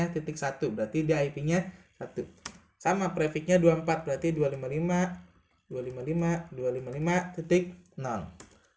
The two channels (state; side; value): identical; both; correlation 1.00